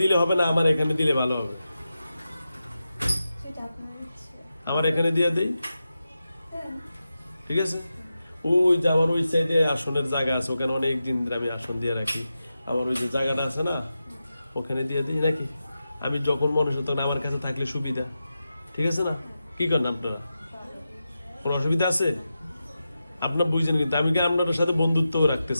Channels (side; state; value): both; inverted; correlation -0.91